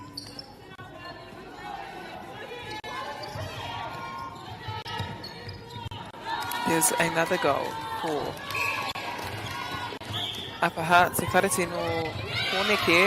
There's another goal for Upper Hutt. Se karate no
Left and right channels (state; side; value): identical; both; correlation 1.00